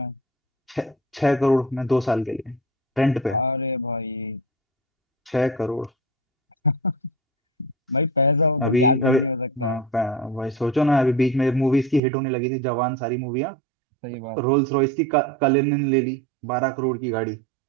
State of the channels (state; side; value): drops out; left; at 12.0 s